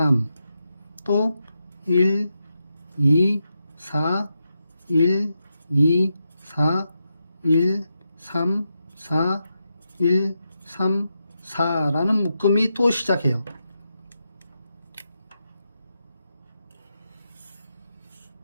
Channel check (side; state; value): both; inverted; correlation -0.86